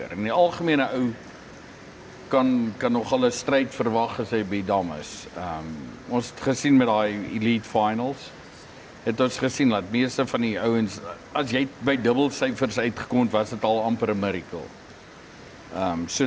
En die algemene ou kan nogal 'n stryd verwag as hy by die dam is. Ons het gesien met daai elite finals. Het ons gesien dat meeste van die ouens as jy by dubbelsyfers uitgekom het, was dit al amper 'n miracle. So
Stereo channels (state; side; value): identical; both; correlation 1.00